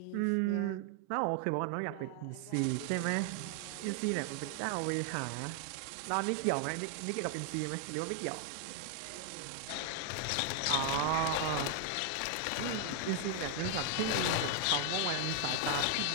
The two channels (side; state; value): both; different; correlation 0.00